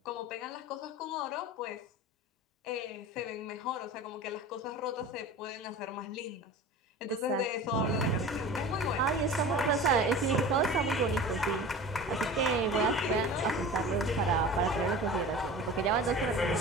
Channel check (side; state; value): both; normal; correlation 0.36